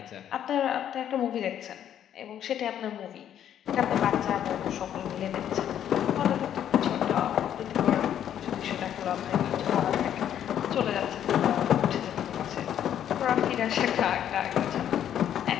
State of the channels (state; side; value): quieter; right; 10.2 dB